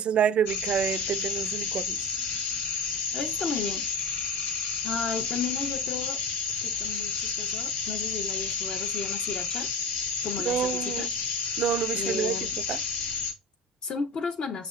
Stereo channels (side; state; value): both; normal; correlation 0.27